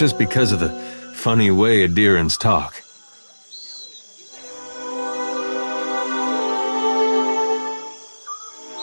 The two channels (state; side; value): inverted; both; correlation -1.00